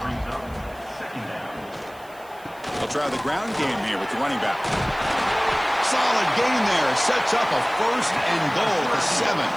try the ground game here with the running back. Solid gain there. Sets up a 1st and goal at the 7.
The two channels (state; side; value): noise; right; hiss, 25 dB below the sound